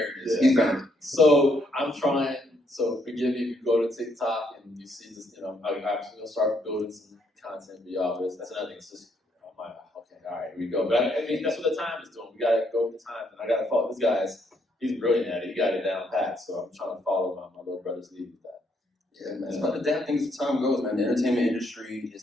it is. He found it. So I'm trying. So forgive me if you go to TikTok and you see this. I'm actually gonna start building some content for y'all. But that's another thing. It's just, okay, all right, here we go. But I mean, that's what the time is doing. We gotta go with the time, and I gotta follow this guy's. He's brilliant at it. He got it down pat. So I'm trying to follow my little brother's lead with that. Yeah, man. It's about adapting as the time goes, man. The entertainment industry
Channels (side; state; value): both; normal; correlation 0.73